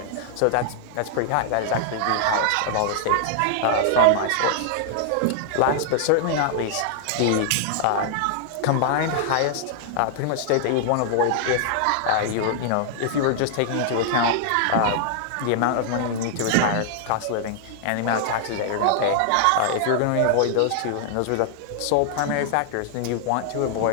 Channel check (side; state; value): both; different; correlation -0.01